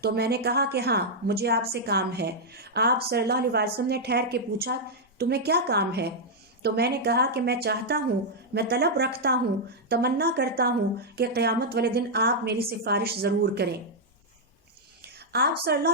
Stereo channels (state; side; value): normal; both; correlation -0.05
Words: تو میں نے کہا کہ ہاں مجھے آپ سے کام ہے۔ آپ صلی اللہ علیہ وسلم نے ٹھہر کے پوچھا تمہیں کیا کام ہے؟ تو میں نے کہا کہ میں چاہتا ہوں، میں طلب رکھتا ہوں، تمنا کرتا ہوں کہ قیامت والے دن آپ میری سفارش ضرور کریں۔ آپ صلی اللہ